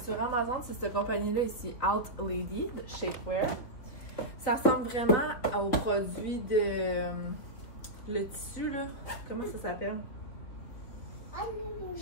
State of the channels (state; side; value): late; right; 4.2 ms